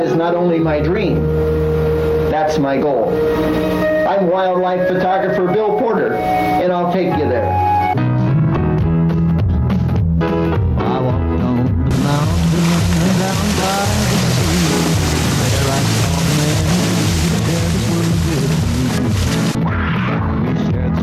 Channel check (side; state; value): both; identical; correlation 1.00